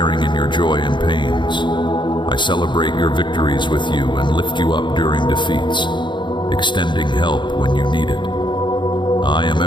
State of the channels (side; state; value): right; late; 0.23 ms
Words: in your joy and pains. I celebrate your victories with you and lift you up during defeats, extending help when you need it. I am